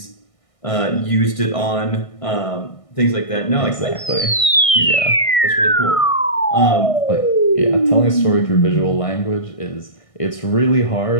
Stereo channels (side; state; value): right; late; 1.6 ms